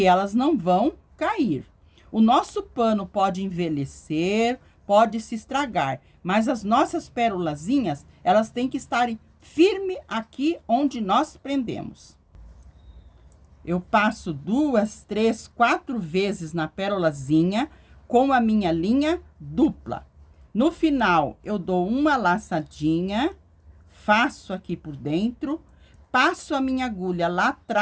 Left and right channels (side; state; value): both; identical; correlation 1.00